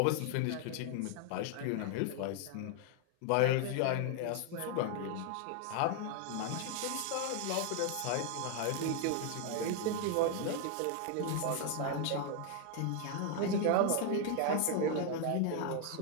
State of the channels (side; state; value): both; different; correlation 0.00